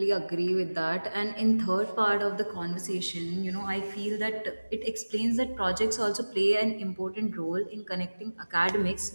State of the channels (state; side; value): inverted; both; correlation -1.00